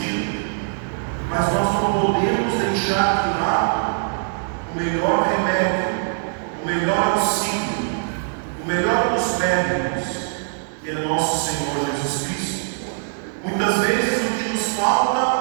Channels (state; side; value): silent; left; 60 dB below the other